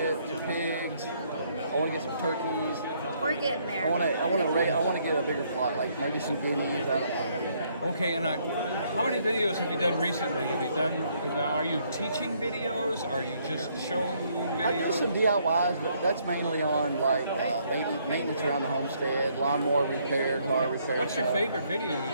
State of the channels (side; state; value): both; inverted; correlation -0.69